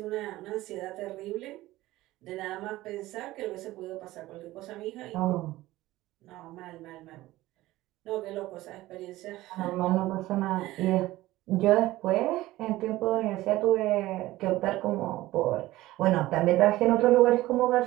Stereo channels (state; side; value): quieter; left; 17.1 dB